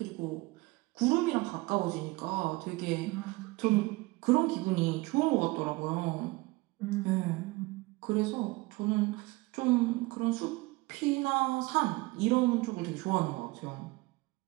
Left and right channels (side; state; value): left; quieter; 22.6 dB